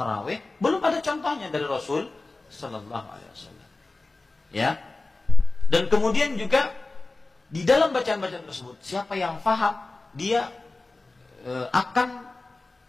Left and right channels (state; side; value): quieter; right; 3.3 dB